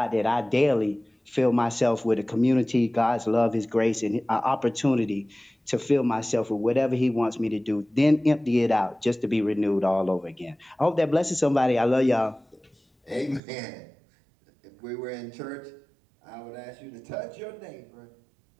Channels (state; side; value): drops out; left; at 13.4 s